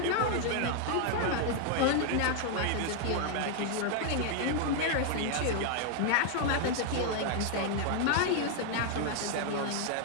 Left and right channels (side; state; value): both; different; correlation 0.00